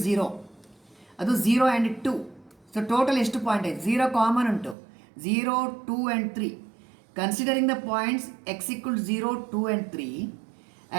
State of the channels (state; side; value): drops out; left; at 4.8 s